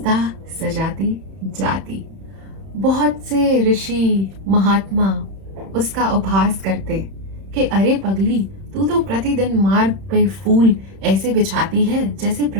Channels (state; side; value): late; left; 31 ms